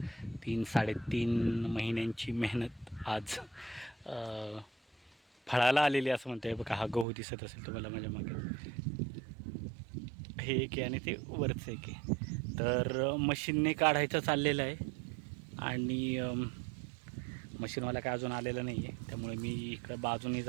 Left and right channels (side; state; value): left; drops out; at 7.1 s